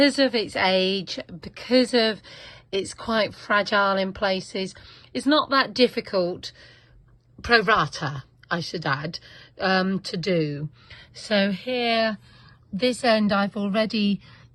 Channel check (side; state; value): both; identical; correlation 1.00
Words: of its age, because of it's quite fragile in places, it's not that difficult, pro rata I should add, to do. So here, this end I've already